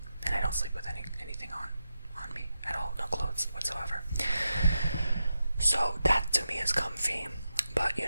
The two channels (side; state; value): both; inverted; correlation -0.88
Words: and I don't sleep with anything on me at all, no clothes whatsoever. So that to me is comfy, but